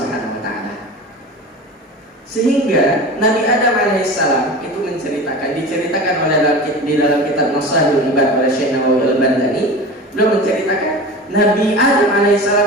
wa taala. Sehingga Nabi Adam alaihissalam itu diceritakan oleh di dalam kitab Maslahul Ibad oleh Syekh Nawawi Al-Bandani, beliau menceritakan Nabi Adam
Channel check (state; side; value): normal; both; correlation 0.33